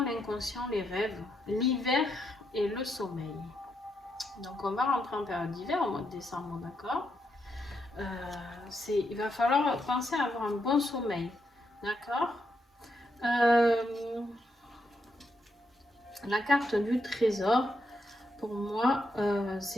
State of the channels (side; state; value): both; normal; correlation 0.81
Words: l'inconscient, les rêves, l'hiver et le sommeil. Donc on va rentrer en période d'hiver au mois de décembre, d'accord. Il va falloir penser à avoir un bon sommeil, d'accord. La carte du trésor, pour moi,